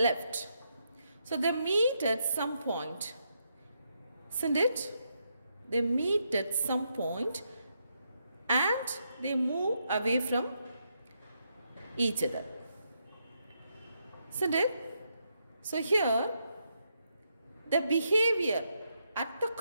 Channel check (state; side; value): inverted; both; correlation -0.80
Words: So, they meet at some point. Isn't it? They meet at some point and they move away from each other. Isn't it? So, here, the behavior at the